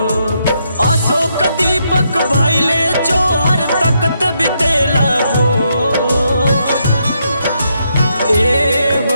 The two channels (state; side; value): inverted; both; correlation -0.78